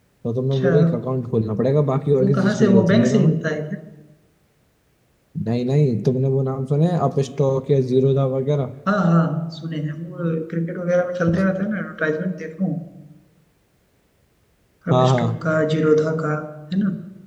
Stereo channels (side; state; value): both; identical; correlation 1.00